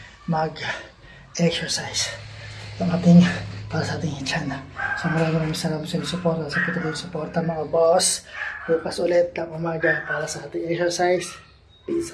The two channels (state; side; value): identical; both; correlation 1.00